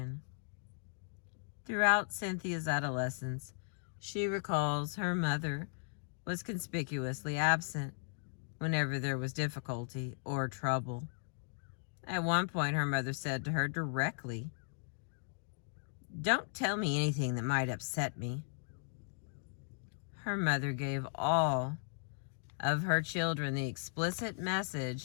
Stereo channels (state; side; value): silent; right; digital silence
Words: Throughout Cynthia's adolescence, she recalls her mother was conspicuously absent whenever there was difficulty or trouble. At one point, her mother said to her directly, "Don't tell me anything that might upset me." Her mother gave all of her children the explicit